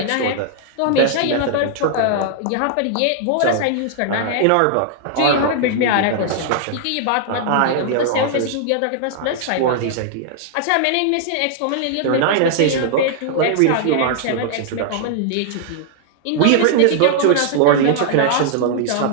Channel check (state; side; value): different; both; correlation -0.01